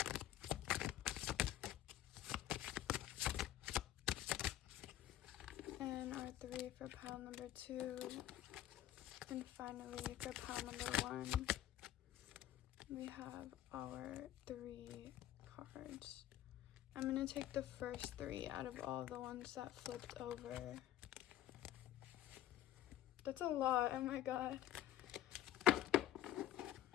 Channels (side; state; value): right; quieter; 12.7 dB